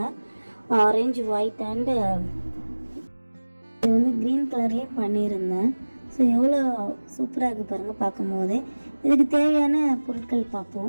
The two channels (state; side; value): inverted; both; correlation -1.00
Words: ஆரஞ்சு, ஒயிட் அண்டு இது வந்து க்ரீன் கலர்லேயே பண்ணியிருந்தேன். ஸோ எவ்வளோ சூப்பராக இருக்குது பாருங்கள் பார்க்கும் போதே. இதுக்கு தேவையான பொருட்கள்